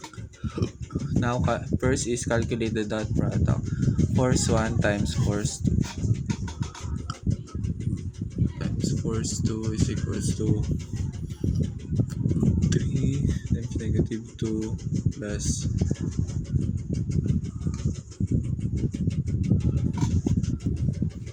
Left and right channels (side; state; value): both; identical; correlation 1.00